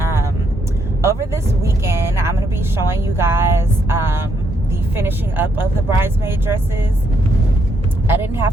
over this weekend, I'm going to be showing you guys the finishing up of the bridesmaid dresses. I didn't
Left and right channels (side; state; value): both; normal; correlation 0.75